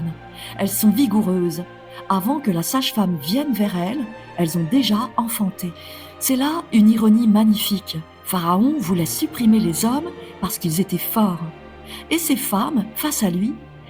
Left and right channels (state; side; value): identical; both; correlation 1.00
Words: Elles sont vigoureuses. Avant que la sage-femme vienne vers elles, elles ont déjà enfanté. » C'est là une ironie magnifique. Pharaon voulait supprimer les hommes parce qu'ils étaient forts. Et ces femmes, face à lui,